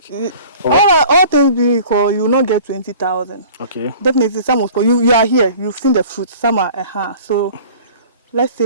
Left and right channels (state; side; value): inverted; both; correlation -0.45